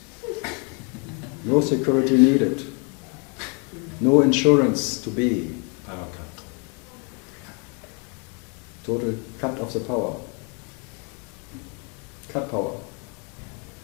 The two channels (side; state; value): right; quieter; 35.1 dB